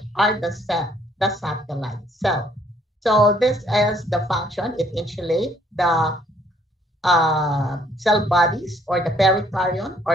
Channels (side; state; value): both; normal; correlation 0.64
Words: are the satellite cell. So this is the function. It insulates the cell bodies or the pericardium